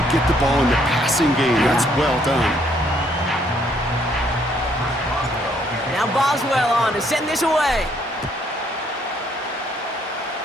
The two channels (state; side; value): normal; both; correlation 0.68